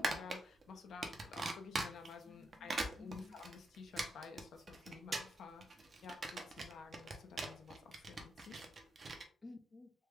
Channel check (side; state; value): both; normal; correlation 0.83